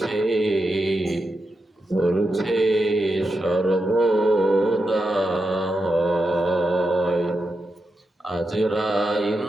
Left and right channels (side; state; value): both; normal; correlation 0.87